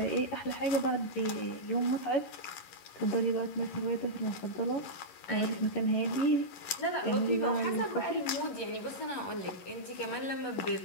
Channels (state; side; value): late; right; 11 ms